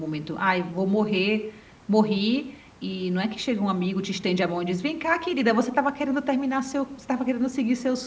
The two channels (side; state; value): both; identical; correlation 1.00